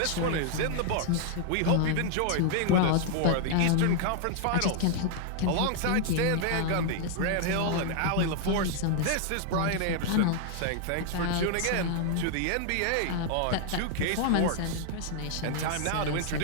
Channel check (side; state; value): both; different; correlation 0.00